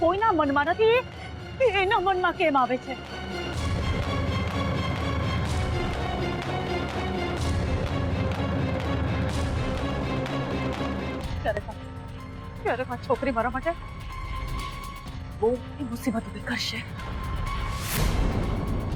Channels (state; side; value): identical; both; correlation 1.00